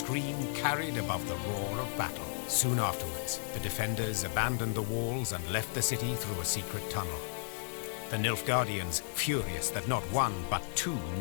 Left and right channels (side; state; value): right; silent; digital silence